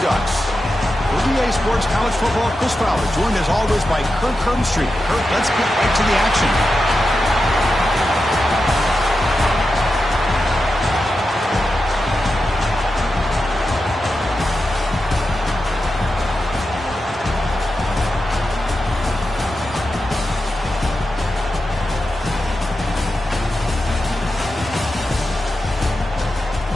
Ducks. For EA Sports College Football, Chris Fowler, joined as always by Kirk Herbstreit. Kirk, let's get right to the action.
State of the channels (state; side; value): normal; both; correlation 0.90